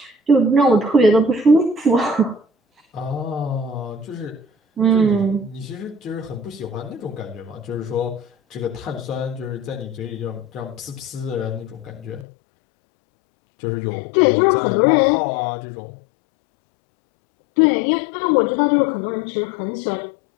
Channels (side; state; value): right; drops out; at 12.2 s